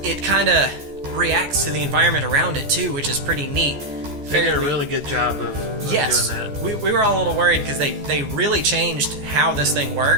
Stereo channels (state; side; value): late; left; 14 ms